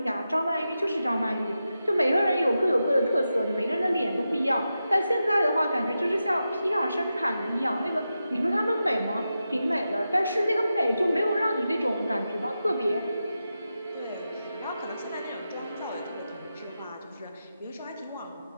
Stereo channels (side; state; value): both; inverted; correlation -0.90